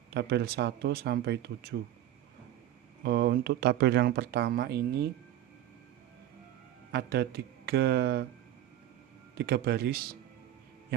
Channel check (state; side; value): quieter; left; 12.6 dB